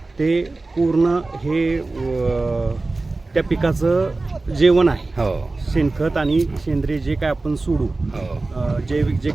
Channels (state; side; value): quieter; left; 3.3 dB